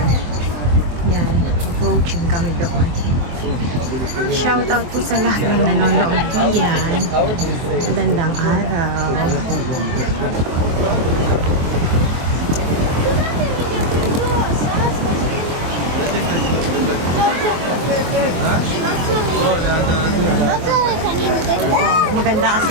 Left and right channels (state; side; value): late; left; 23 ms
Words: Yan, approaching kami doon. Shout out po sa lahat ng nanonood diyan. Magandang araw. Maganda